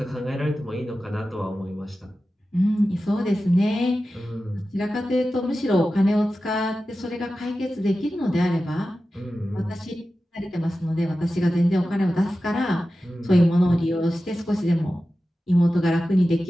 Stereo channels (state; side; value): normal; both; correlation 0.94